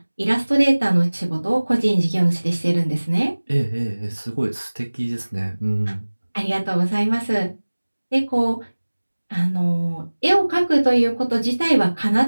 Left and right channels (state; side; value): inverted; both; correlation -1.00